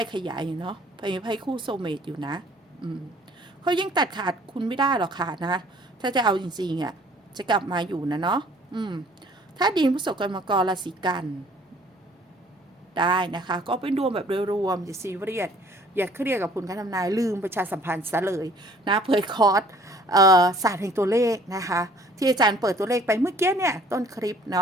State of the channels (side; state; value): both; normal; correlation 0.55